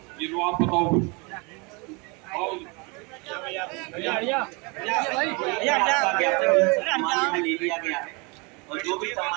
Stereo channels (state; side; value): quieter; left; 29.7 dB